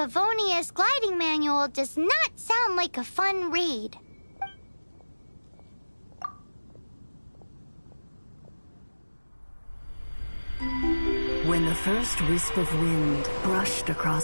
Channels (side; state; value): both; inverted; correlation -1.00